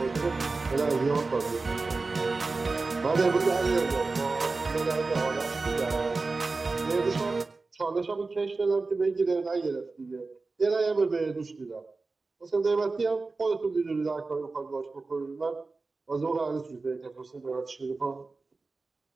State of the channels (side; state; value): left; quieter; 3.8 dB